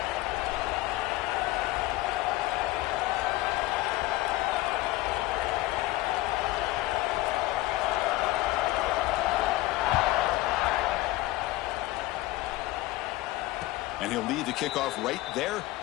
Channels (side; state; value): right; quieter; 18.0 dB